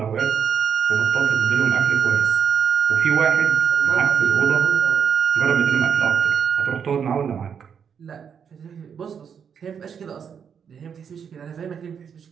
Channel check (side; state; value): left; quieter; 7.3 dB